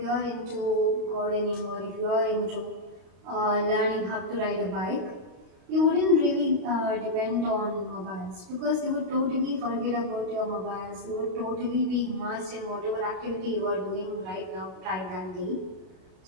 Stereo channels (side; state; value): left; late; 32 ms